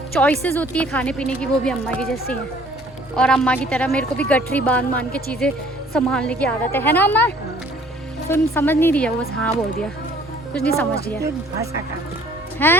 चॉइसेस होती है खाने पीने की वो भी अम्मा की जैसी हैं। और अम्मा की तरह मेरे को भी गठरी बांध के चीज़ें संभालने की आदत है ना अम्मा। तुम समझ नहीं रही है वो, बस हाँ बोल दिया, कुछ नहीं समझ रही है। भाषा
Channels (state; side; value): normal; both; correlation 0.56